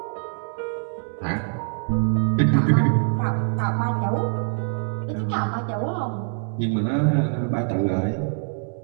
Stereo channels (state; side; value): silent; left; 62 dB below the other